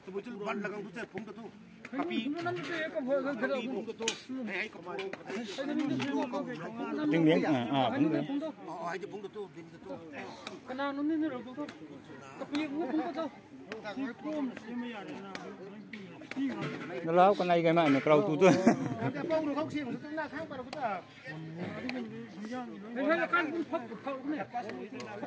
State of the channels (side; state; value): both; identical; correlation 1.00